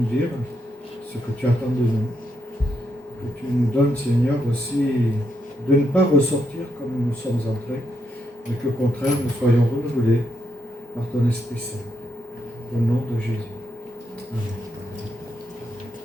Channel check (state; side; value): normal; both; correlation 0.80